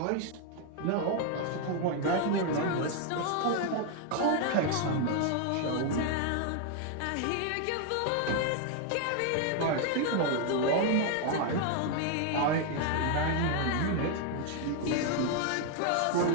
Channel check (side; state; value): both; different; correlation 0.00